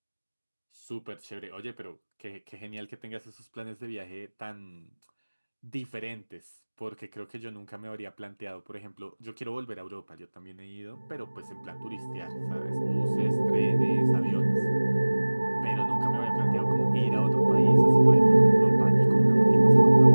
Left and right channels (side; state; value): both; inverted; correlation -1.00